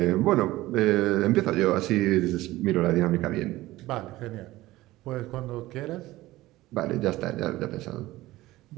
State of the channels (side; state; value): left; quieter; 17.4 dB